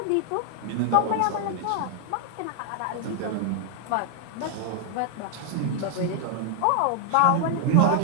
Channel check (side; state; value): both; different; correlation 0.00